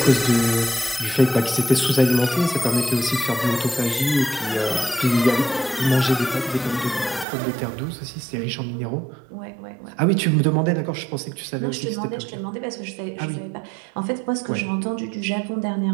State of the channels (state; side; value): drops out; left; at 7.2 s